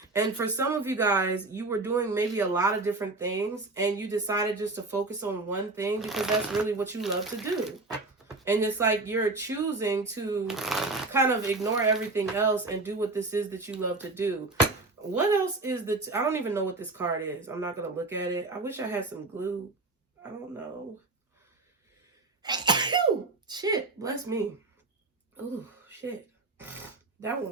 And for some of you guys, you were doing maybe a lot of different things and you decided just to focus on one thing because that's really what you love to do. And it's like you're choosing to kind of ignore everything else and do what this is that you love to do. What else is I don't even know what this card is. I'm not going to look at it. I wish I had some glue. I don't know. Shit, bless me. Oh, shit. That one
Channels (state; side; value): quieter; left; 3.2 dB